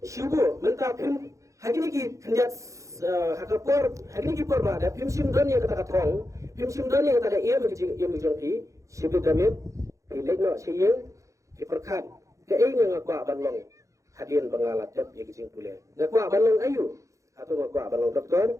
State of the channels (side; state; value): left; late; 0.15 ms